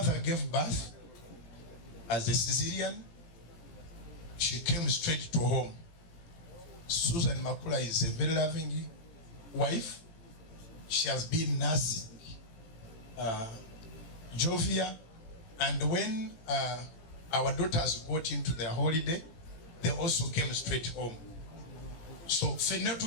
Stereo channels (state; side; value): late; right; 18 ms